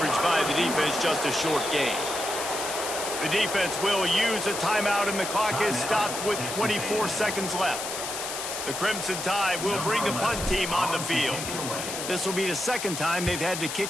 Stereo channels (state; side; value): noise; left; hiss, 5 dB below the sound